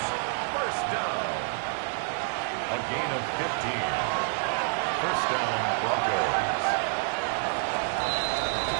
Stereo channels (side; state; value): left; silent; 57 dB below the other